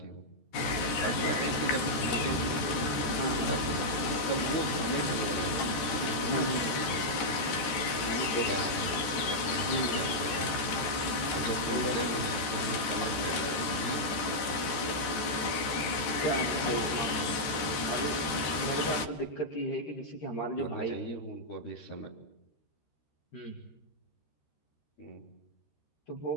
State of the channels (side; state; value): right; late; 13 ms